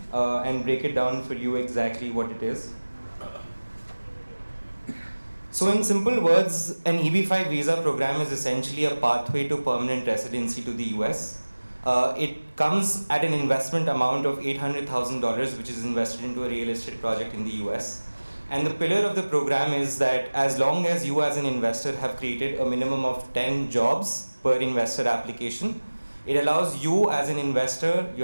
and break it down for you exactly what it is. So in simple words, an EB-5 visa program is essentially a pathway to permanent residency to the US. It comes at an investment amount of $800,000, which is invested into a real estate project in the US. And the pillar of the program is that as long as you as an investor have created a minimum of 10 jobs per investor application, it allows you as an investor,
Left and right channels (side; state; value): both; inverted; correlation -1.00